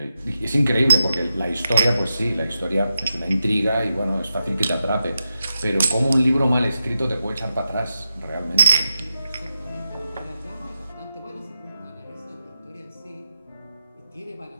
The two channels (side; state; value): both; inverted; correlation -0.88